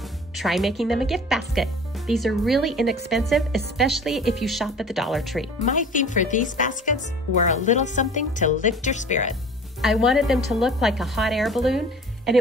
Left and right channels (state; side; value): normal; both; correlation 0.44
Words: Try making them a gift basket. These are really inexpensive, especially if you shop at the Dollar Tree. My theme for these baskets were a little something to lift your spirit. I wanted them to look like a hot air balloon, and